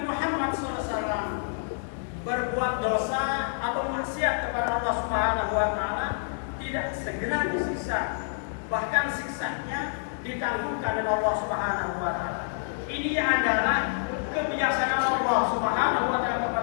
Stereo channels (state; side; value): silent; right; 60 dB below the other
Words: Muhammad SAW berbuat dosa atau maksiat kepada Allah Subhanahu wa taala tidak segera disiksa, bahkan siksanya ditangguhkan oleh Allah Subhanahu wa taala. Ini adalah kebiasaan Allah Subhanahu wa taala